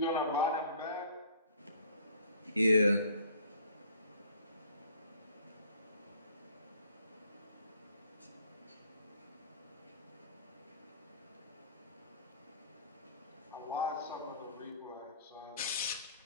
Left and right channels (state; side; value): inverted; both; correlation -0.54